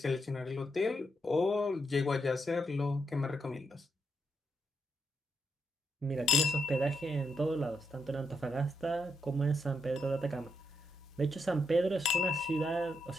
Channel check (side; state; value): both; normal; correlation 0.80